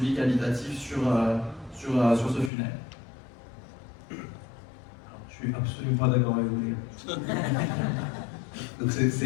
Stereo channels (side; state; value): right; drops out; at 2.5 s